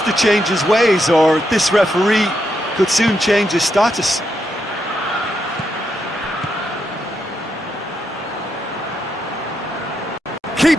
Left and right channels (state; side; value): normal; both; correlation 0.81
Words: to change his ways, or this referee could soon change his status.